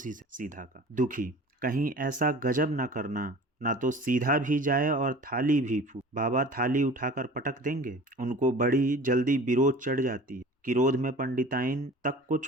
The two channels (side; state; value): both; normal; correlation 0.42